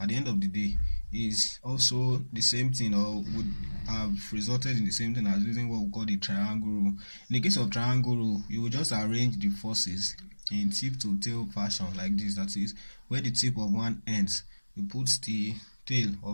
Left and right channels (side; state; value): both; inverted; correlation -1.00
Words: at the end of the day is also the same thing, or would have resulted in the same thing as using what we call the triangle rule. In the case of triangle rule, you will just arrange the forces in tip to tail fashion like this, that is, where the tip of one ends, you put the tail